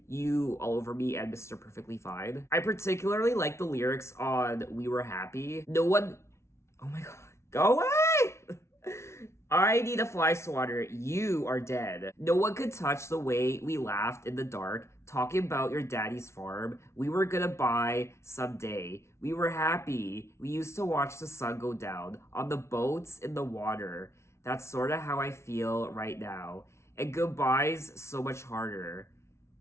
You All Over Me and Mr. Perfectly Fine. I particularly like the lyrics on We Were Happy. No one, oh my god, go away. I need a fly swatter. You are dead. No one could touch the way we laughed in the dark, talking about your daddy's farm. We were gonna buy someday. We were happy. We used to watch the sun go down on the boats in the water. That's sorta how I feel right now. And goodbye's so much harder.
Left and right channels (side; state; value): right; late; 0.13 ms